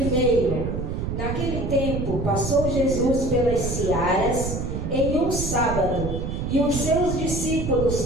Naquele tempo passou Jesus pelas searas em um sábado, e os seus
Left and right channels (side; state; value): right; noise; rumble, 3 dB below the sound